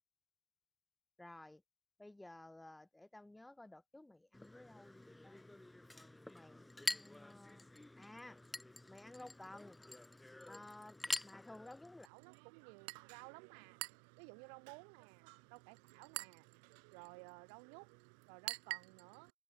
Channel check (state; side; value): drops out; left; at 12.1 s